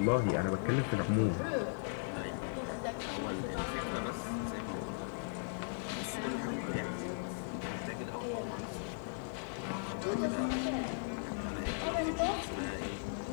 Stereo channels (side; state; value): right; silent; digital silence